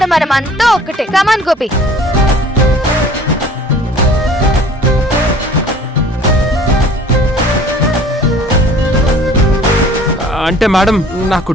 మనమంతా ఒక్కటే. కమాన్ గోపి. అంటే మేడం నాకు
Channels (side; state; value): both; normal; correlation 0.49